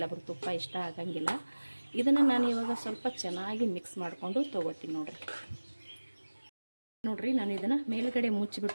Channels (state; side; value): inverted; both; correlation -1.00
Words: ತುಪ್ಪ ಇಷ್ಟ ಆಗಂಗಿಲ್ಲ. ಇದನ್ನು ನಾನು ಇವಾಗ ಸ್ವಲ್ಪ ಚೆನ್ನಾಗಿ ಮಿಕ್ಸ್ ಮಾಡಿಕೊಂಡು ತೊಗೋತೀನಿ ನೋಡಿರಿ. ನಾನು ಇದನ್ನು ಮೇಲ್ಗಡೆ